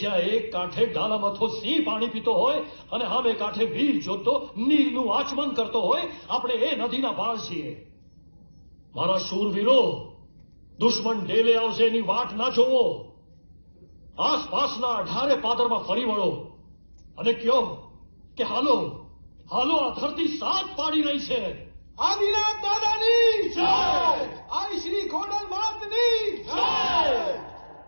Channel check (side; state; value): both; inverted; correlation -1.00